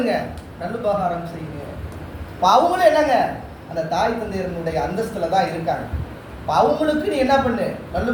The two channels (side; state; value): both; identical; correlation 1.00